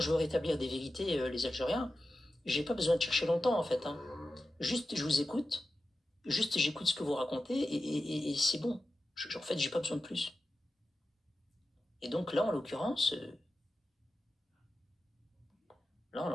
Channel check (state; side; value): normal; both; correlation 0.93